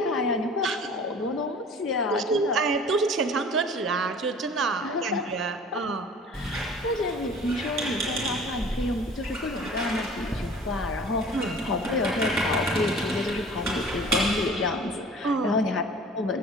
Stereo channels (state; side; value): normal; both; correlation 0.45